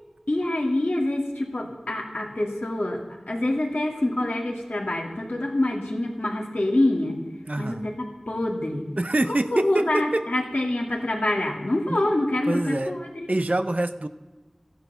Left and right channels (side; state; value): both; normal; correlation 0.96